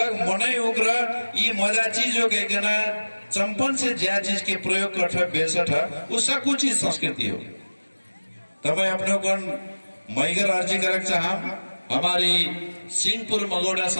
मनै उग्र ये मजा चीज हो गए ना चंपन से ज्या चीज के प्रयोग कर बेसठ उसका कुछ चीज संस्कृति हो तब अपने को मैगर अर्जी करक चाह हमारी सिंहपुर मगोड़ा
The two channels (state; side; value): inverted; both; correlation -1.00